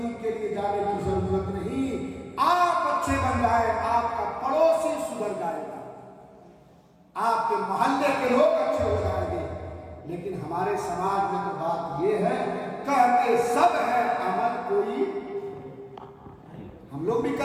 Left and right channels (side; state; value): both; identical; correlation 1.00